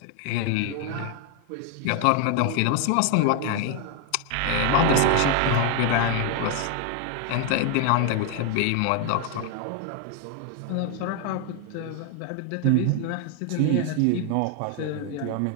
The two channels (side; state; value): both; different; correlation 0.01